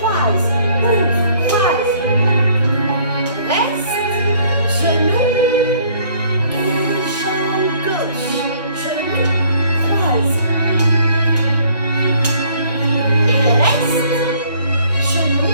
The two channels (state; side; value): inverted; both; correlation -0.60